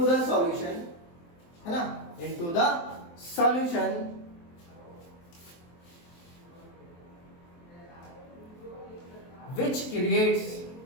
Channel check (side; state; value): right; late; 23 ms